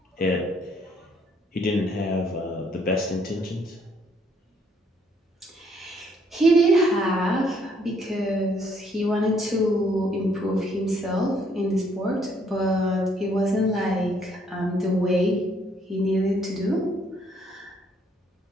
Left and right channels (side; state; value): both; normal; correlation 0.67